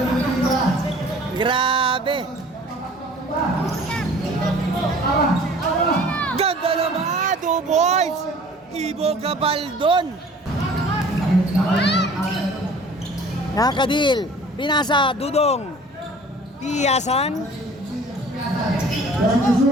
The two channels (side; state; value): both; normal; correlation 0.48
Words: Grabe. Ganda naman, 2 boys. Ibo Gabaldon. Nakadil. Pinasa, Dudong. Piyasan. Time to